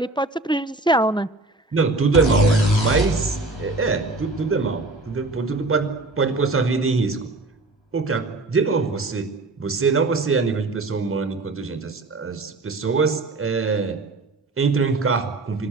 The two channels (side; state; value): left; quieter; 3.2 dB